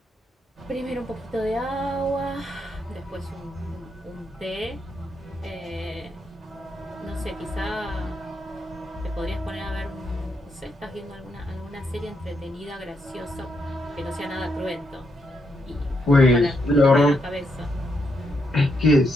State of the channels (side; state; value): both; normal; correlation 0.80